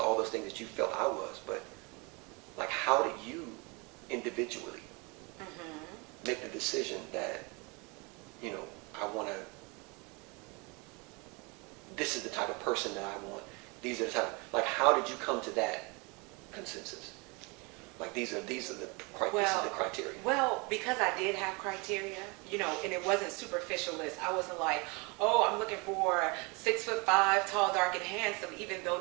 all those things that you felt I was, but like, how did you individually make the decision that, I want to, this is the type of person that I want. These are the type, like, how did you come to that consensus? Like, these are the criteria. Well, because I did have criteria, and it wasn't superficialist. I wasn't like, oh, I'm looking for 6'5", tall, dark, and handsome, even though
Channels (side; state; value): left; quieter; 29.1 dB